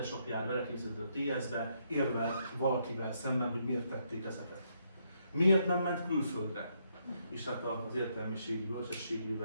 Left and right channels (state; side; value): inverted; both; correlation -0.75